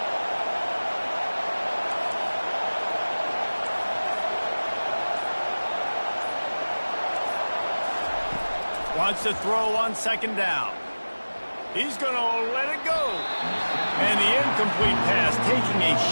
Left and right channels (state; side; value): inverted; both; correlation -1.00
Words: Wants to throw on 2nd down. He's going to let it go. And the incomplete pass, taking a